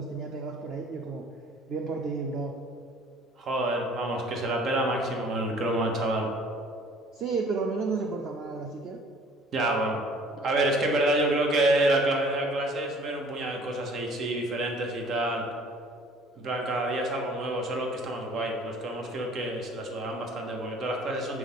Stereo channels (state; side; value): normal; both; correlation 0.53